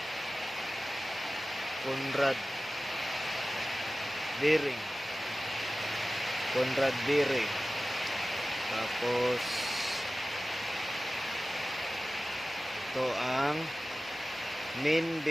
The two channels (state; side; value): normal; both; correlation 0.96